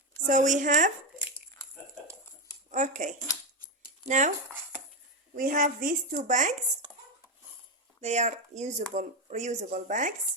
So we have, okay, now we have these two bags. They are reusable bags,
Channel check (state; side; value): normal; both; correlation 0.09